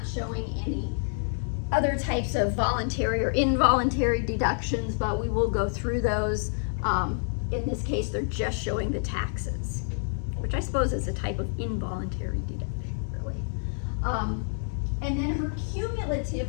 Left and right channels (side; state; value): right; silent; digital silence